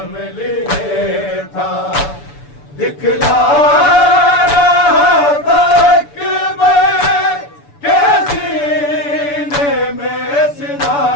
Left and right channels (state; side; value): late; right; 6.9 ms